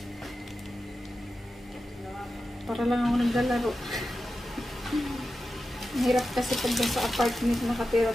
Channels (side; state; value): both; normal; correlation 0.92